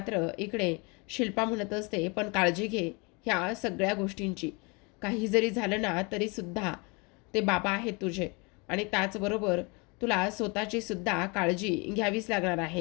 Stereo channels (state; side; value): quieter; right; 29.8 dB